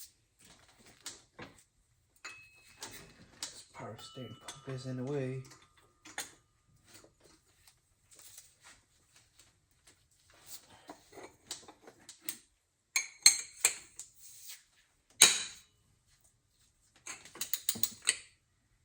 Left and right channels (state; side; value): identical; both; correlation 1.00